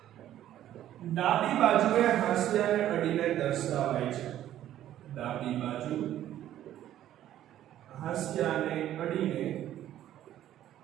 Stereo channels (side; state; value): left; quieter; 12.2 dB